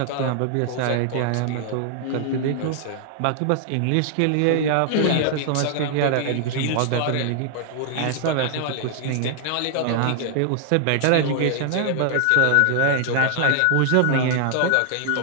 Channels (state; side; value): different; both; correlation 0.00